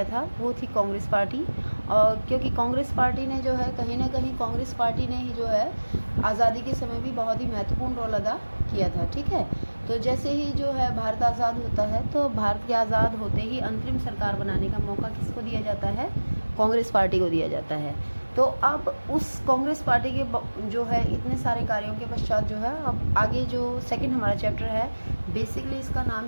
था वो थी कांग्रेस पार्टी। और क्योंकि कांग्रेस पार्टी ने जो है कहीं ना कहीं कांग्रेस पार्टी ने ही जो है आज़ादी के समय भी बहुत ही महत्वपूर्ण रोल अदा किया था। ठीक है, तो जैसे ही जो है भारत आज़ाद होता है तो भारत के आज़ाद होते ही अंतरिम सरकार बनाने का मौका किसको दिया जाता है? कांग्रेस पार्टी को दिया जाता है। तो अब उस कांग्रेस पार्टी के जो है इतने सारे कार्यों के पश्चात जो है अब आगे जो सेकंड हमारा चैप्टर है, बेसिकली इसका नाम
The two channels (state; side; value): inverted; both; correlation -1.00